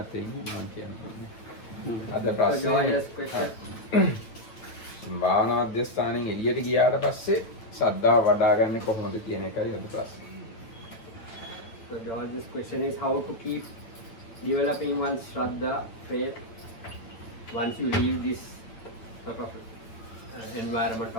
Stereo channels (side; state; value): right; late; 9.0 ms